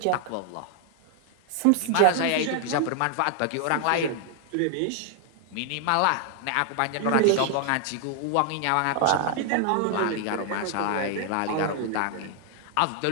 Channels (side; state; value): both; different; correlation 0.00